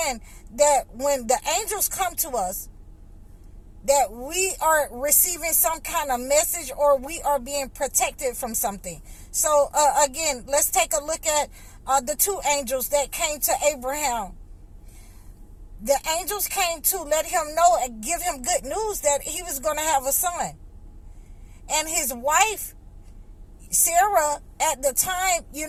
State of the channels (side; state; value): both; identical; correlation 1.00